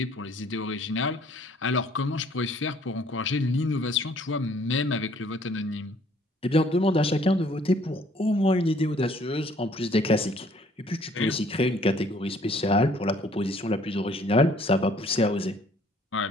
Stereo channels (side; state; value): both; normal; correlation 0.59